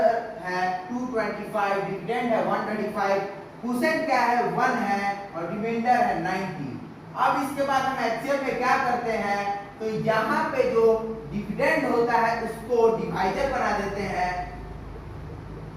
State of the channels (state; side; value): identical; both; correlation 1.00